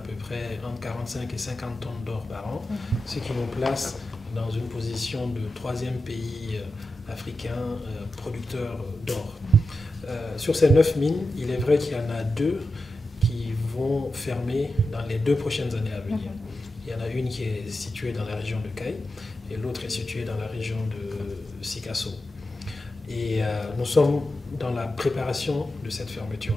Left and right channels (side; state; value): both; normal; correlation 0.91